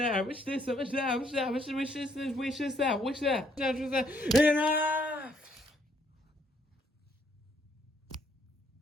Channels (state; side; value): normal; both; correlation 0.69